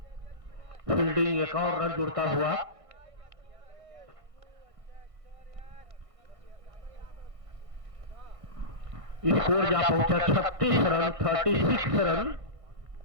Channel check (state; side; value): late; left; 1.6 ms